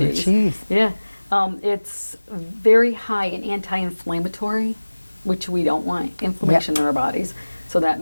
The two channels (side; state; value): both; inverted; correlation -1.00